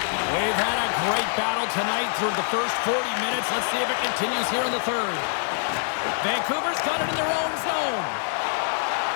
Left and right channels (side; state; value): right; silent; digital silence